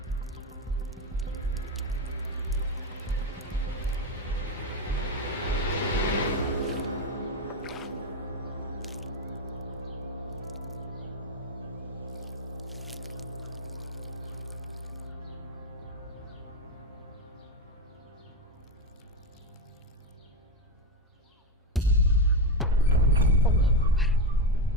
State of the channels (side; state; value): both; normal; correlation 0.11